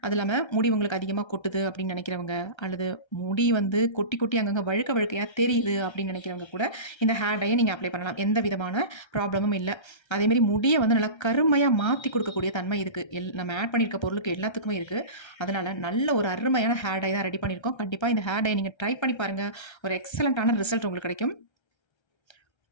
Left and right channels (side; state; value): right; late; 1.3 ms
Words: அது இல்லாமல் முடி உங்களுக்கு அதிகமாக கொட்டுது அப்படின்னு நினைக்கிறவங்க, அல்லது முடி வந்து கொட்டி கொட்டி அங்கங்கே வழுக்கையாக தெரியுது அப்படின்னு நினைக்கிறவங்க கூட இந்த ஹேர் டையை நீங்கள் அப்ளை பண்ணலாம். எந்த விதமான ப்ராப்ளமும் இல்லை. அதேமாரி முடியை வந்து நல்லா கருமையாக மாற்றி கொடுக்கக்கூடிய தன்மை இருக்குது. நம்ம ஆட் பண்ணியிருக்க பொருளுக்கு எல்லாத்துக்குமே இருக்குது. அதனால் நல்ல ஒரு அருமையான ஹேர் டை தான் ரெடி பண்ணியிருக்கோம். கண்டிப்பாக இந்த ஹேர் டை நீங்கள் ட்ரை பண்ணி பாருங்கள். ஒரு எக்ஸலண்ட்டான ரிசல்ட் உங்களுக்கு கிடைக்கும்.